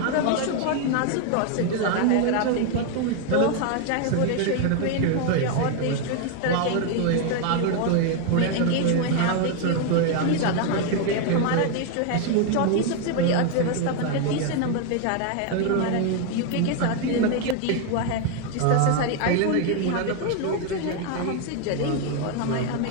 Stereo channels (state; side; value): different; both; correlation 0.01